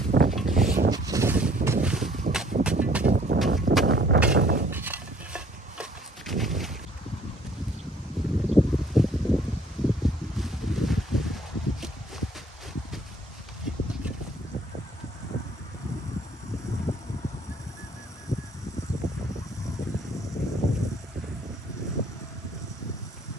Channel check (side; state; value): both; normal; correlation 0.59